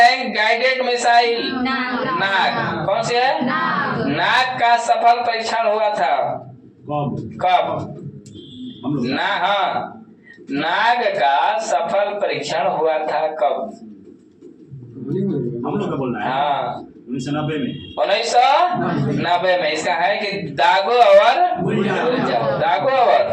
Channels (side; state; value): both; identical; correlation 1.00